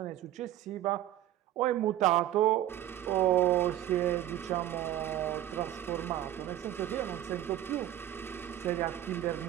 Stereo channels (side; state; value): left; quieter; 12.8 dB